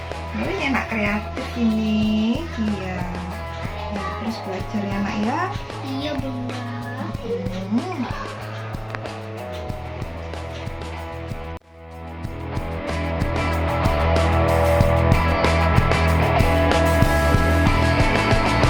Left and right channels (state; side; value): identical; both; correlation 1.00